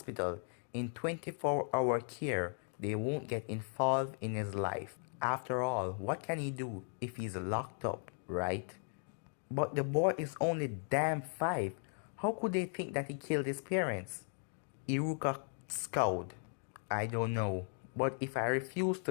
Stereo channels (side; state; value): right; silent; 53 dB below the other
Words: in 24-hour care, they won't get involved in his life. After all, what can he do if he's locked up, right? But the boy is only damn 5. How could they think that he killed his parents? Iruka scowled. I don't know, but if I refuse